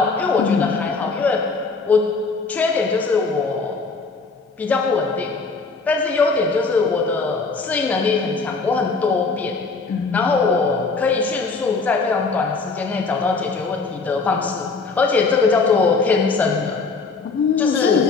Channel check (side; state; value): right; quieter; 4.3 dB